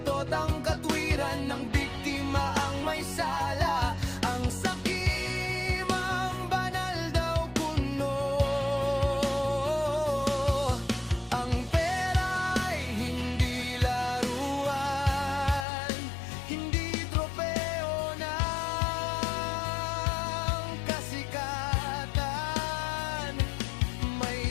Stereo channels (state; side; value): drops out; right; at 15.7 s